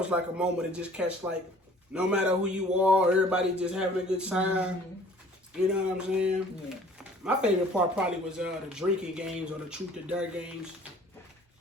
like a moment to just catch, like, no matter who you are, everybody just having a good time. Mm-hmm. You know what I'm saying? Yeah. My favorite part probably was the drinking games or the truth or dare games.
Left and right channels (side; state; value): both; normal; correlation 0.52